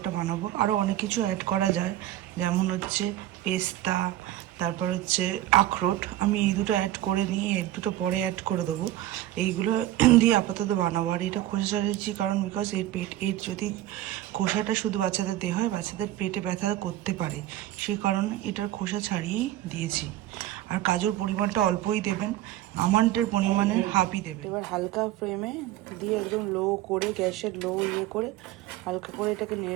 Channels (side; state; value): left; quieter; 14.1 dB